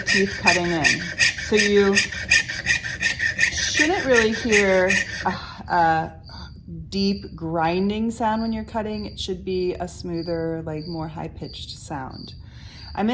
cutting in. So you shouldn't really hear a deep grinding sound when you're cutting. It should be a smoother, like more high-pitched sound. I'm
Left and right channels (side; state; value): both; identical; correlation 1.00